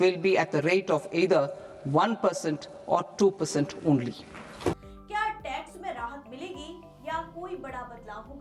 will be at the rate of either 1% or 2% only. क्या टैक्स में राहत मिलेगी या कोई बड़ा बदलाव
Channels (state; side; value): identical; both; correlation 1.00